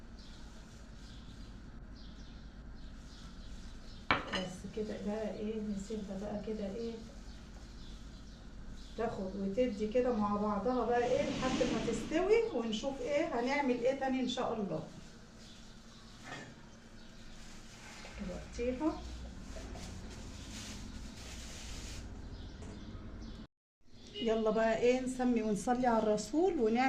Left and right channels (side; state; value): both; identical; correlation 1.00